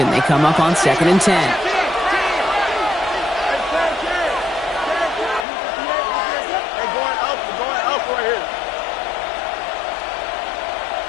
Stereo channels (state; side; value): drops out; right; at 5.5 s